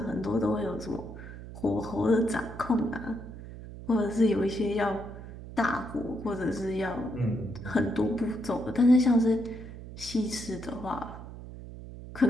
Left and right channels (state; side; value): noise; right; hum, 13 dB below the sound